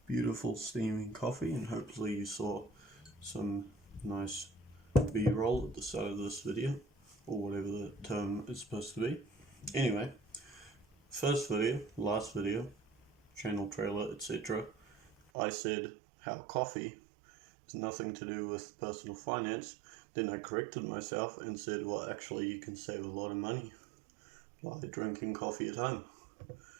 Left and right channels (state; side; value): drops out; left; at 15.2 s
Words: beautiful steaming coffee, and hopefully you saw some nice B-roll at the start of this video, or whatever the term is supposed to be. Anyway, first video, last video, channel trailer, etc. I said how coffee has nothing to do with personal finance. Then I corrected myself and said, well, actually you can save a lot of money by drinking coffee at home.